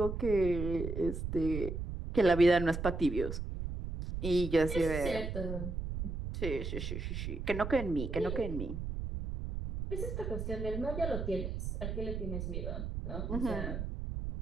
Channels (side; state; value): right; noise; rumble, 4 dB below the sound